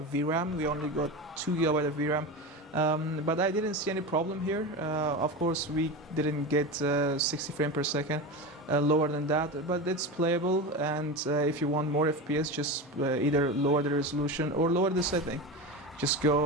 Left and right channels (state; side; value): normal; both; correlation 0.24